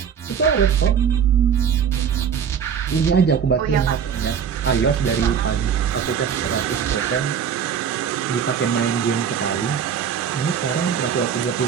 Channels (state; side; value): quieter; left; 7.6 dB